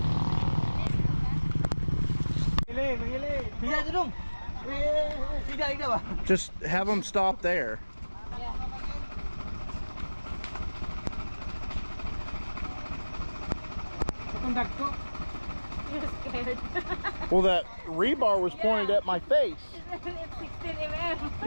Just have them stop there. You're scared. Well, that rebar was pointed at my face. It's 16 mm.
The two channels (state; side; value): inverted; both; correlation -1.00